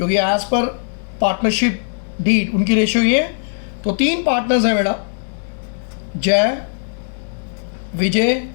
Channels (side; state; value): right; silent; 66 dB below the other